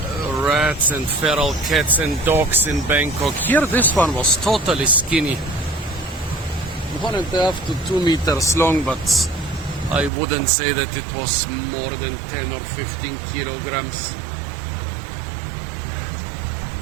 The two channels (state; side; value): drops out; left; at 10.1 s